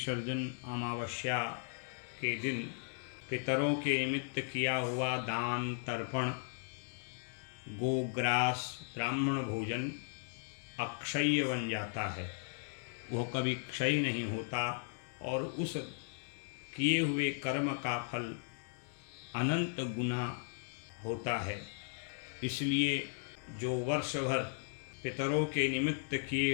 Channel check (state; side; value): silent; right; digital silence